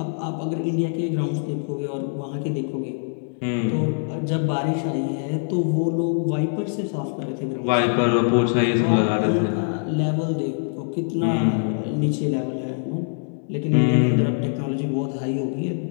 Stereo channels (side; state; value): right; silent; digital silence